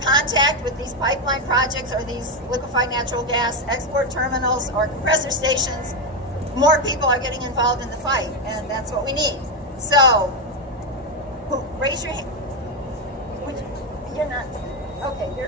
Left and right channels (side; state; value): both; normal; correlation 0.08